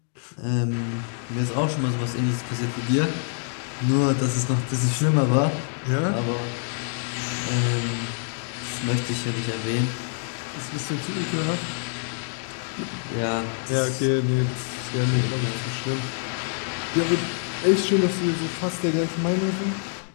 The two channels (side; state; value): right; silent; digital silence